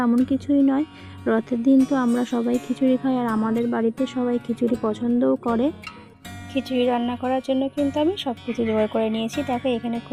এমন কিছুই নয়, রথের দিন তো আমরা সবাই খিচুড়ি খাই, আর আমাদের বাড়িতে সবাই খিচুড়ি পছন্দও করে। খিচুড়ি রান্না করার জন্য কিন্তু আমি সব কিছু জোগাড় করে নিয়েছি। দেখো, এখানে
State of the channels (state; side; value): identical; both; correlation 1.00